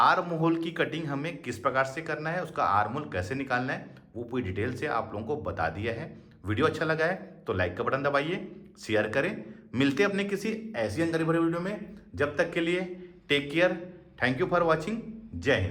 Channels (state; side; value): identical; both; correlation 1.00